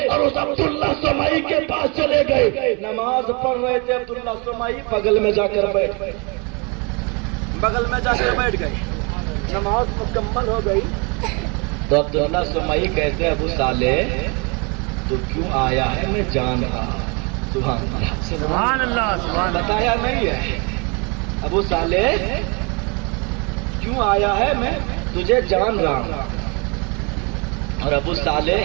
اور اس عبداللہ سمائی کے پاس چلے گئے. نماز پڑھ رہے تھے عبداللہ سمائی, بغل میں جا کر بیٹھ گئے. نماز مکمل ہو گئی تو عبداللہ سمائی کہتے ابو صالح تو کیوں آیا ہے میں جان رہا. سبحان اللہ. بتایا نہیں ہے ابو صالح کیوں آیا ہے میں تجھے جان رہا ہوں. اور ابو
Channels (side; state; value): left; quieter; 31.5 dB